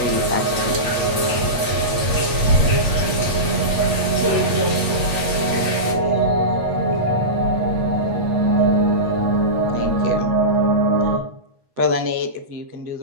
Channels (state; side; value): late; left; 8.3 ms